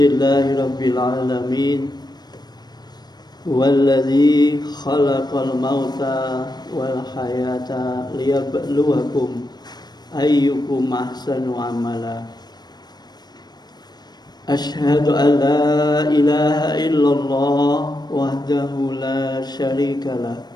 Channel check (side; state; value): right; late; 0.20 ms